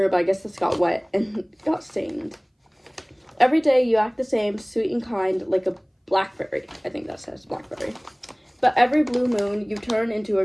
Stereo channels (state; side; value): identical; both; correlation 1.00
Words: but I guess this got wet and got stained. Every day you act the same, sweet and kind, like a blackberry. I think that says blackberry. But every blue moon you turn into